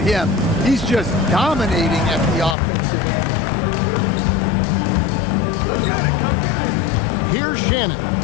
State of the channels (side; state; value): right; drops out; at 2.6 s